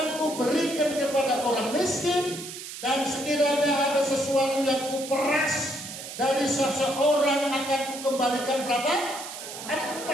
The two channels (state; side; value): noise; right; hiss, 10 dB below the sound